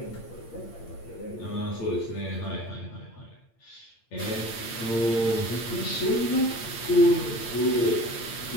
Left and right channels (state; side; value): late; right; 8.8 ms